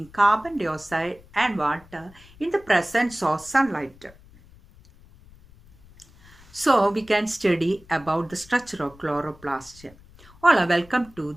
carbon dioxide and water in the presence of sunlight. So we can study about the structure of chloroplast. All are welcome to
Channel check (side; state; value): left; noise; rumble, 24 dB below the sound